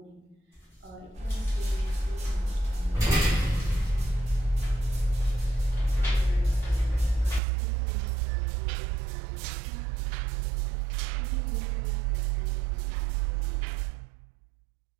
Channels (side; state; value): left; drops out; at 7.4 s